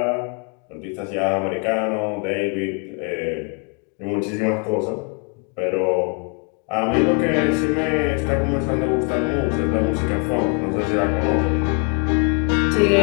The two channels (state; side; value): quieter; right; 37.8 dB